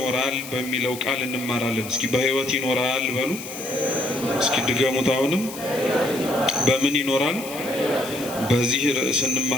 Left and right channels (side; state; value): left; noise; hiss, 13 dB below the sound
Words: በሚለው ቃል እንማራለን። እስኪ በሕይወት ይኖራል በሉ። እስኪ ድገሙት። አሁንም በምን ይኖራል? በዚህ ርዕስ